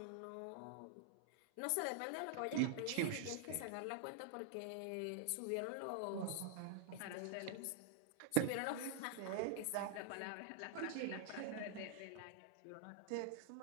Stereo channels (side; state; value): both; different; correlation -0.01